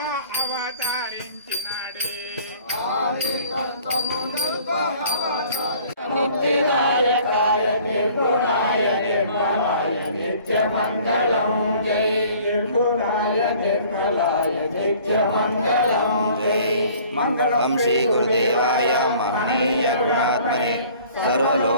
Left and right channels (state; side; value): inverted; both; correlation -0.52